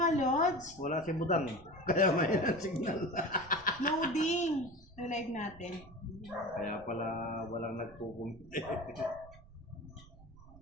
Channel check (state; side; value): noise; right; rumble, 21 dB below the sound